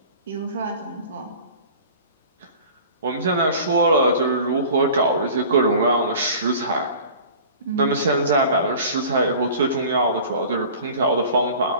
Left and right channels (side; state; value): both; inverted; correlation -0.42